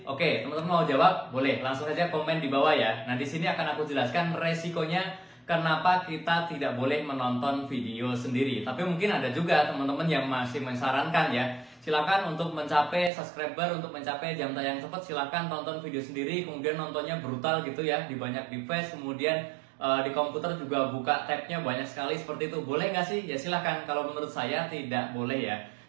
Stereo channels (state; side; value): drops out; left; at 13.1 s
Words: Oke, teman-teman mau jawab? Boleh, langsung aja komen di bawah ya. Nah, di sini akan aku jelaskan resikonya kenapa kita tidak boleh menonton video sendiri. Tapi mungkin ada juga teman-teman yang masih mensarankan ya. Silakan untuk mencapai subscriber, untuk mencapai jam tayang cepat, silakan tonton video sendiri, kemudian nontonnya brutal gitu ya, di banyak device, kemudian di komputer juga buka tabnya banyak sekali seperti itu. Boleh nggak sih? Ya silakan. Kalau menurut saya tidak boleh ya.